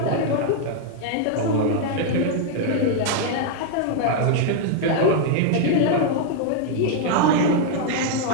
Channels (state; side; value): different; both; correlation 0.00